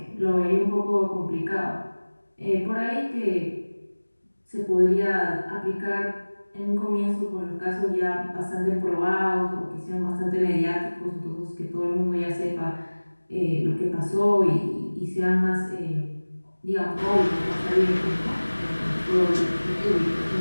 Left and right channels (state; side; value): inverted; both; correlation -1.00